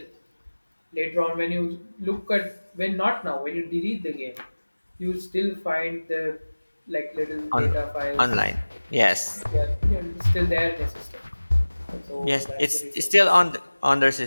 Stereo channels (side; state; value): both; inverted; correlation -1.00